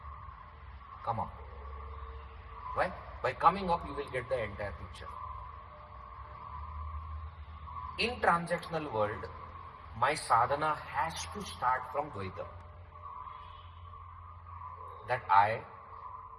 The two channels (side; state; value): both; identical; correlation 1.00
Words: Come up. Why? By coming up, you will get the entire picture. In transactional world, my sadhana has to start from Dvaita. That I,